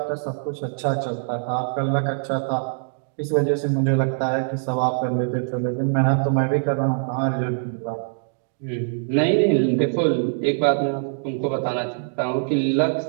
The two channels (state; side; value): silent; left; digital silence